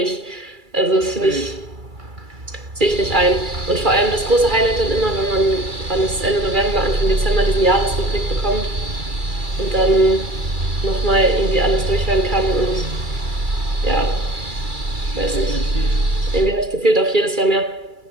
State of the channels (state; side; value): late; left; 2.3 ms